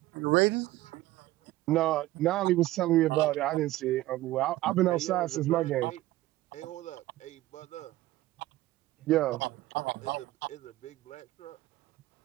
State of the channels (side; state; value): left; quieter; 16.6 dB